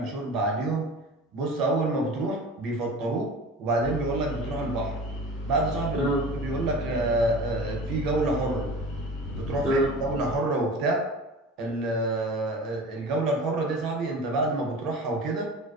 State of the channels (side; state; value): both; normal; correlation 0.36